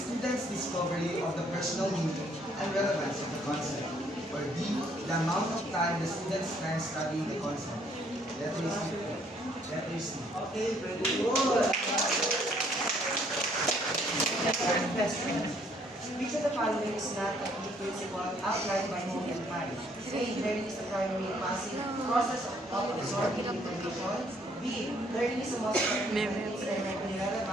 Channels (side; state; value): both; normal; correlation 0.65